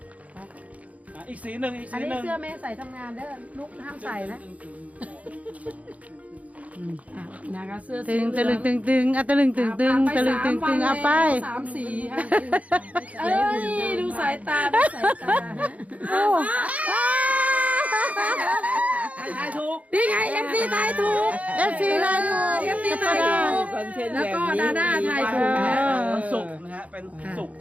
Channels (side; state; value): left; late; 0.069 ms